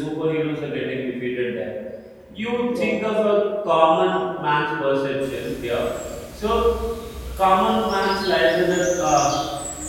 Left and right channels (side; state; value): both; identical; correlation 1.00